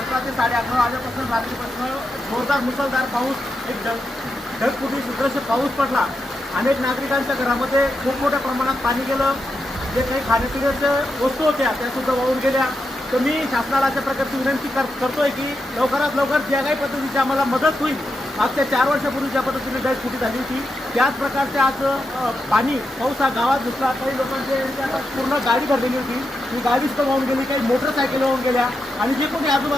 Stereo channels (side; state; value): both; normal; correlation 0.86